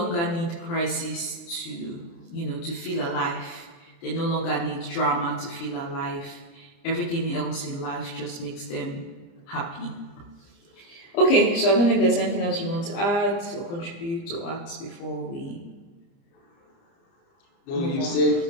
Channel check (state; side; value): late; right; 29 ms